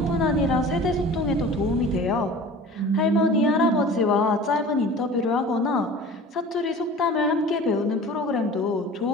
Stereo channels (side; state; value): both; normal; correlation 0.41